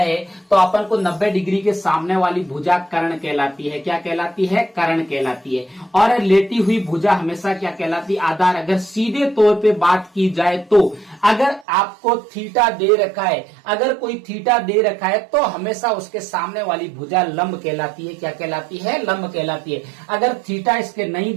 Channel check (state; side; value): drops out; left; at 11.7 s